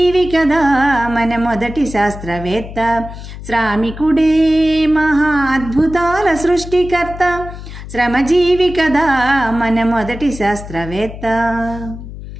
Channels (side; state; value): left; noise; hum, 12 dB below the sound